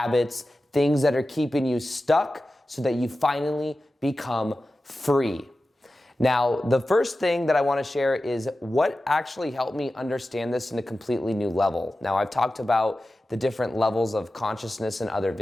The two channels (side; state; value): both; normal; correlation 0.94